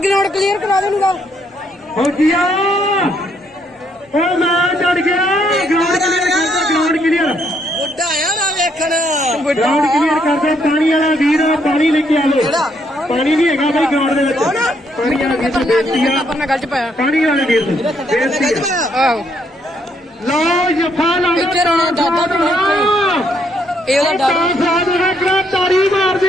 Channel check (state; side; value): normal; both; correlation 0.72